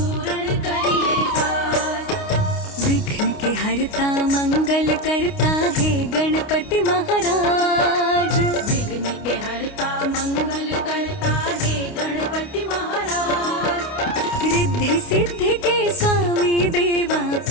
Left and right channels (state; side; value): late; right; 29 ms